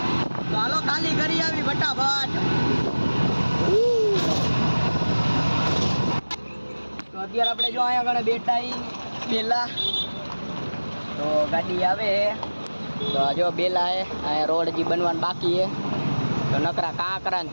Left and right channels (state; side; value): inverted; both; correlation -1.00